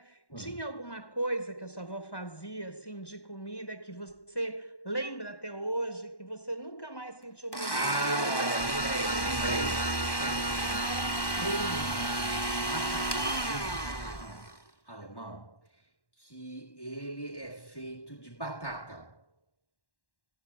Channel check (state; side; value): late; right; 1.1 ms